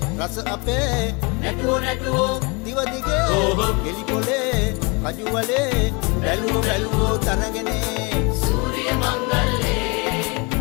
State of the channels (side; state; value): right; quieter; 29.8 dB